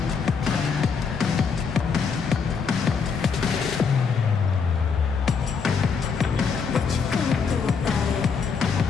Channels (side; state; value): right; quieter; 5.7 dB